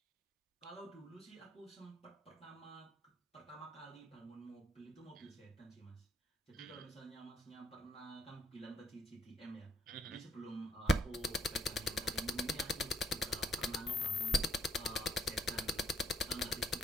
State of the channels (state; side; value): normal; both; correlation 0.66